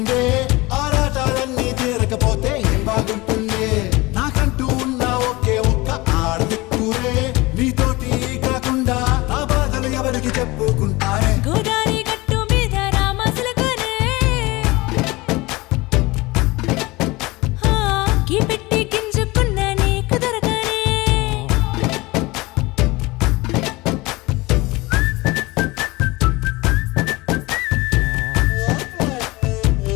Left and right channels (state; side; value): quieter; right; 22.1 dB